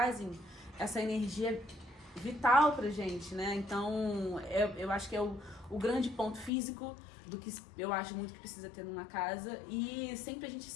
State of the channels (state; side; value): drops out; right; at 6.5 s